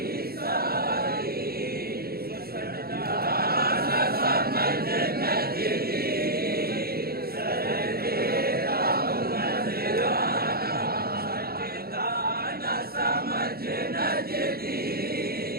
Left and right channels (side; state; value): left; late; 0.45 ms